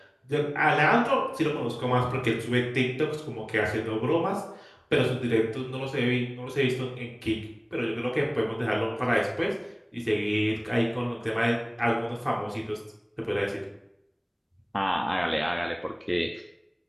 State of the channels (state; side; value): identical; both; correlation 1.00